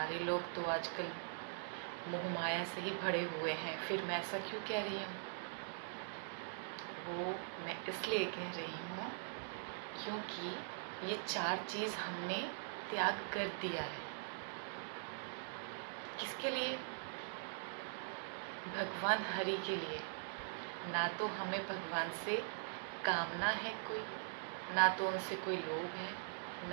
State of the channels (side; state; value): left; silent; digital silence